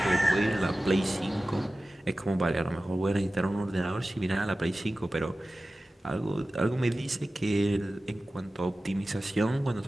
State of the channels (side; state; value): both; normal; correlation 0.95